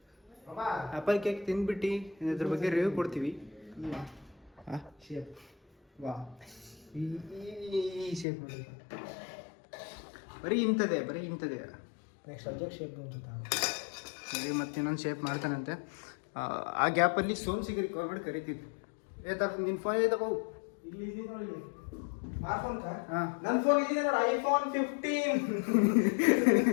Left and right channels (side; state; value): right; drops out; at 8.2 s